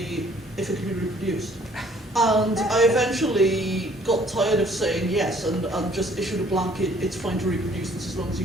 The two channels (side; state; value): both; normal; correlation 0.59